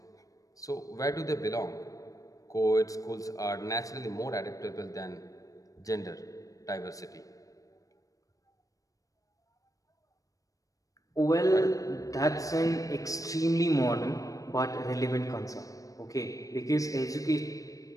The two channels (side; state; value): right; late; 0.16 ms